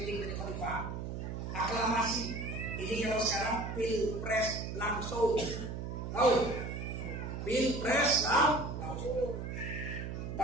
jadi khalifah. Aklamasi. Ini kalau sekarang pilpres langsung. Tahu? Pilpres langsung.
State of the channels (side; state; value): right; noise; hum, 5 dB below the sound